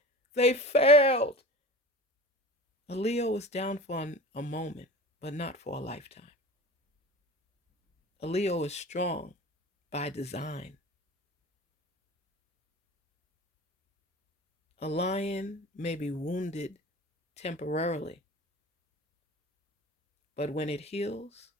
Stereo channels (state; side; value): normal; both; correlation 0.36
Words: they failed. A Leo is down for a moment, but not for a lifetime. A Leo is strong by design. A lion may be wounded temporarily, but when it heals,